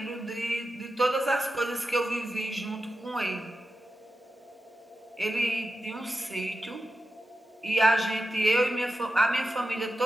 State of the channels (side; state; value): both; normal; correlation 0.91